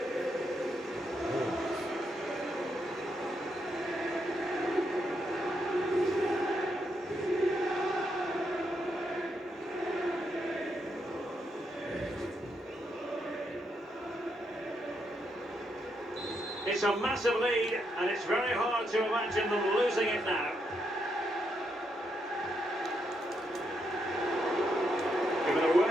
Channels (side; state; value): both; normal; correlation 0.80